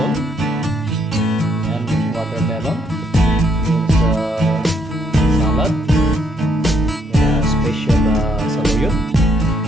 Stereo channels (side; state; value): both; normal; correlation 0.71